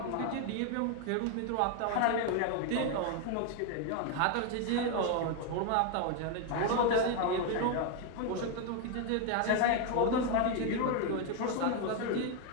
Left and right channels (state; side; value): different; both; correlation 0.01